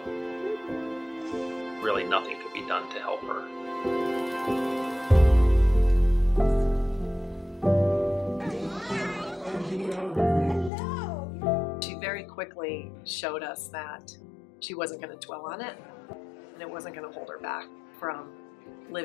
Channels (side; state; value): right; drops out; at 10.7 s